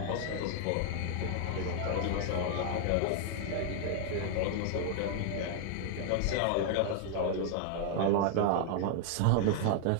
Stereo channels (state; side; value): different; both; correlation 0.00